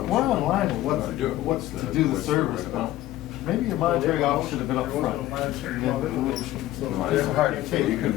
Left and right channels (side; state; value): right; quieter; 14.9 dB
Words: online with what's to do it. What's the, To do the what's service, right amount? maybe your monetary office should have been up front. No, It's hard to So take. you